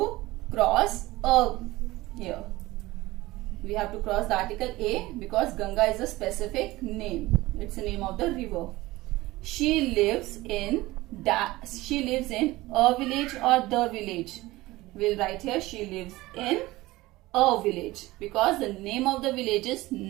cross a here. We have to cross the article a because Ganga is a specific name. It's the name of the river. She lives in a village or the village. We'll write here she lives in a village because the name of the village is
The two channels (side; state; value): left; quieter; 19.1 dB